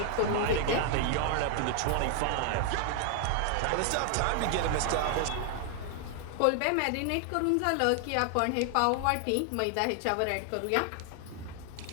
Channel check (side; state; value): both; different; correlation 0.00